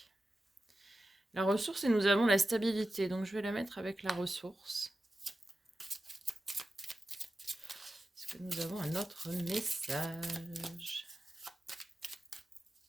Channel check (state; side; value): normal; both; correlation 0.92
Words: La ressource, et nous avons la stabilité. Donc je vais la mettre avec la ressource. Est-ce que nous avons un autre message?